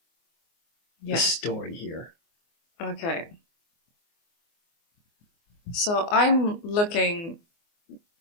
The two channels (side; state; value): right; late; 24 ms